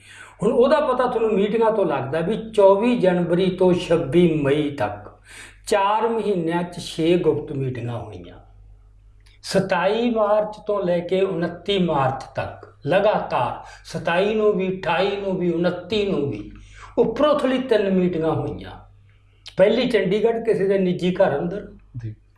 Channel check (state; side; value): identical; both; correlation 1.00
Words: ਹੁਣ ਉਹਦਾ ਪਤਾ ਤੁਹਾਨੂੰ ਮੀਟਿੰਗਾਂ ਤੋਂ ਲੱਗਦਾ ਵੀ 24 ਜਨਵਰੀ ਤੋਂ 26 ਮਈ ਤੱਕ 4 ਮਹੀਨਿਆਂ 'ਚ 6 ਗੁਪਤ ਮੀਟਿੰਗਾਂ ਹੋਈਆਂ। 27 ਮਾਰਚ ਤੋਂ ਲੈ ਕੇ 29 ਮਾਰਚ ਤੱਕ ਲਗਾਤਾਰ 27 ਨੂੰ ਵੀ, 28 ਨੂੰ ਵੀ, 29 ਨੂੰ ਵੀ ਉੱਪਰੋਂ-ਥੱਲੀ 3 ਮੀਟਿੰਗਾਂ ਹੋਈਆਂ। ਪਹਿਲੀ ਚੰਡੀਗੜ੍ਹ ਕਿਸੇ ਦੇ ਨਿੱਜੀ ਘਰ ਅੰਦਰ,